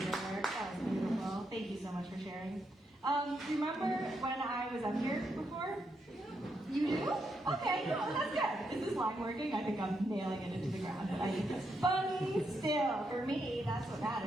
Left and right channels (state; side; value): normal; both; correlation 0.81